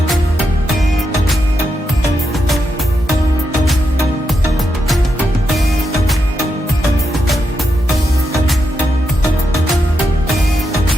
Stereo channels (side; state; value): both; normal; correlation 0.84